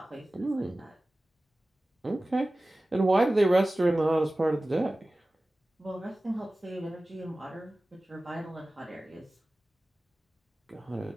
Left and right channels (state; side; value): normal; both; correlation 0.97